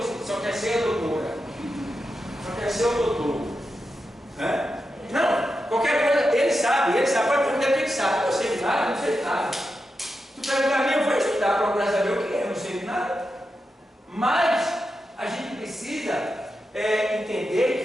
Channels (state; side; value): normal; both; correlation 0.88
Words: só quer ser a doutora, só quer ser o doutor. Né? Não, qualquer coisa, ele sabe, pode perguntar o que ele sabe. Eu sei de nada, não sei de nada. Tu perguntar a mim, eu vou estudar, procurar saber o que é, eu não sei de nada. Mas a gente precisa entender